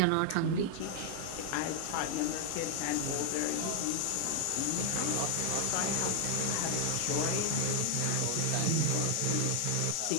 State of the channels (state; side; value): different; both; correlation 0.00